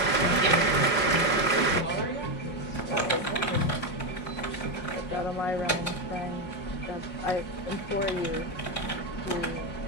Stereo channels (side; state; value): right; late; 5.6 ms